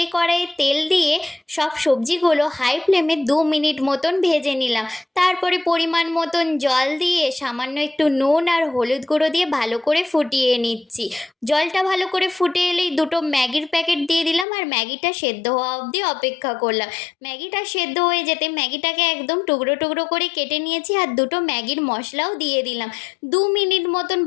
কড়াইয়ে তেল দিয়ে সব সবজিগুলো হাই ফ্লেমে 2 মিনিট মতন ভেজে নিলাম। তারপরে পরিমাণ মতন জল দিয়ে সামান্য একটু নুন আর হলুদ গুঁড়ো দিয়ে ভালো করে ফুটিয়ে নিচ্ছি। জলটা ভালো করে ফুটে এলেই দুটো ম্যাগির প্যাকেট দিয়ে দিলাম আর ম্যাগিটা সেদ্ধ হওয়া অবধি অপেক্ষা করলাম। ম্যাগিটা সেদ্ধ হয়ে যেতে ম্যাগিটাকে একদম টুকরো টুকরো করে কেটে নিয়েছি আর দুটো ম্যাগির মশলাও দিয়ে দিলাম। 2 মিনিট মতন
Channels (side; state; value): right; drops out; at 14.5 s